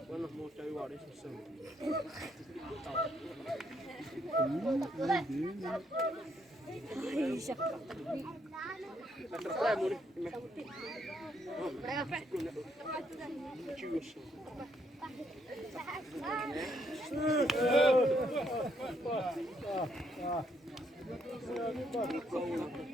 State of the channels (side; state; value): both; normal; correlation 0.73